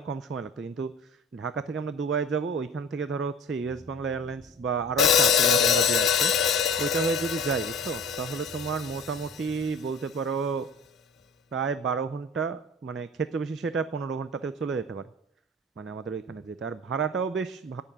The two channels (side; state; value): both; normal; correlation 0.41